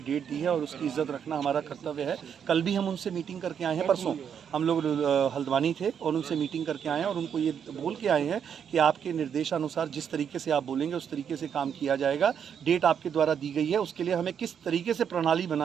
डेट दी है और उसकी इज्जत रखना हमारा कर्तव्य है। कल भी हम उनसे मीटिंग करके आए हैं, परसों हम लोग हल्द्वानी थे और उनसे मीटिंग करके आए हैं, और उनको ये बोल के आए हैं कि आपके निर्देशानुसार जिस तरीके से आप बोलेंगे उस तरीके से काम किया जाएगा। डेट आपके द्वारा दी गई है, उसके लिए हमें किस तरीके से प्रणाली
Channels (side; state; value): left; quieter; 7.9 dB